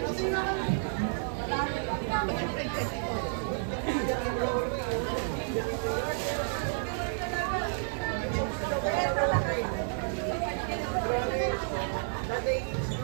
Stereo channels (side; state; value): left; silent; digital silence